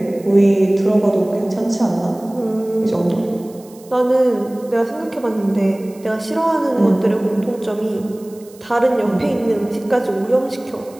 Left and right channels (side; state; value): right; noise; hiss, 25 dB below the sound